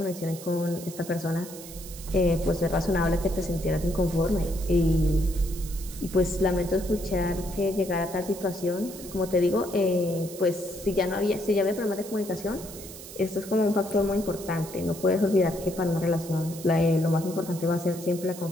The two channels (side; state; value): right; noise; hiss, 14 dB below the sound